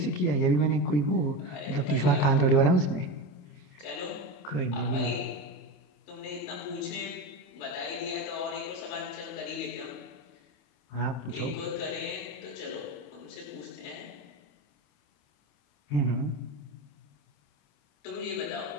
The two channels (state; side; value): late; right; 28 ms